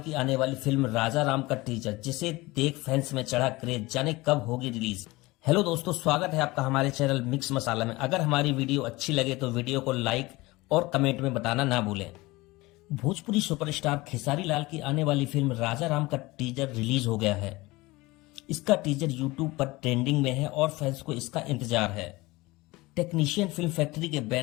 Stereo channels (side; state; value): right; quieter; 21.3 dB